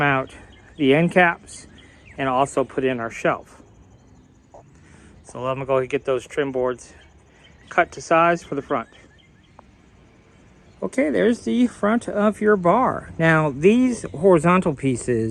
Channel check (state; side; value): identical; both; correlation 1.00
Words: out the end caps and also put in our shelf. So I'm gonna go ahead and get those trim boards cut to size for the front. Okay, there's the front of your bar. Now these horizontal